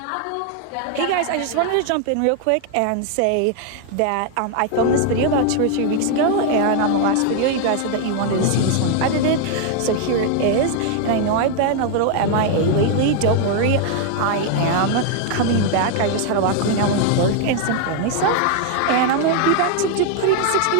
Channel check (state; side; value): different; both; correlation 0.00